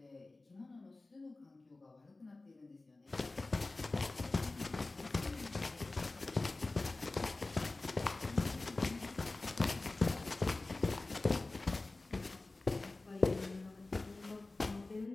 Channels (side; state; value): right; quieter; 3.2 dB